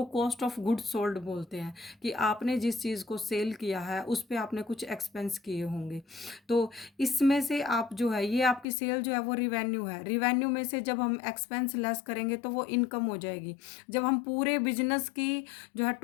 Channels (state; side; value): drops out; right; at 8.7 s